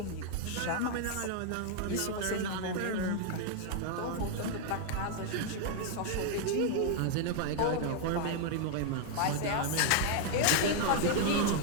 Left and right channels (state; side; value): different; both; correlation 0.00